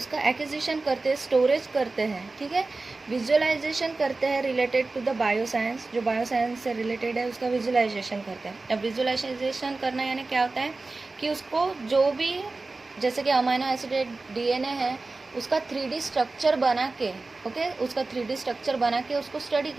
एक्विजिशन करते हैं, स्टोरेज करते हैं, ठीक है, विजुअलाइजेशन करते हैं रिलेटेड टू द बायोसाइंस, जो बायोसाइंस से रिलेटेड है उसका विजुअलाइजेशन करते हैं। अब विजुअलाइजेशन करना यानी क्या होता है कि उसको जो भी, जैसे कि अमाइनो एसिड डीएनए है, उसका 3D स्ट्रक्चर बना के, ओके, उसका 3D स्ट्रक्चर बना के उसको स्टडी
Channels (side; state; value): left; quieter; 3.5 dB